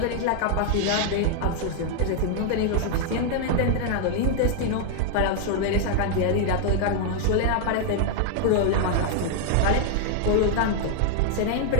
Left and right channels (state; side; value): different; both; correlation 0.00